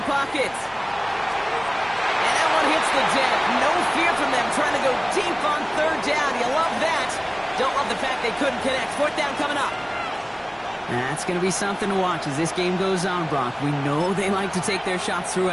pocket. And that one hits the deck. No fear from them trying to go deep on 3rd down. You love that. Don't love the fact they couldn't connect. 4th down coming up. That's going to be something to watch as this game goes on, Brock. We know they like to take their shots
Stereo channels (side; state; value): both; identical; correlation 1.00